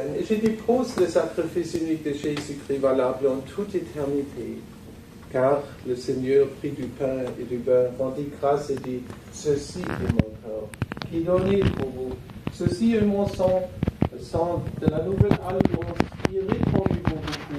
et je dépose le sacrifice unique de Jésus-Christ valable en toute éternité. Car le Seigneur prit du pain et du vin, rendit grâce et dit, ceci est mon corps, qui est donné pour vous. Ceci est mon sang, le sang de la nouvelle alliance, qui est répandu pour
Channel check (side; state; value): both; identical; correlation 1.00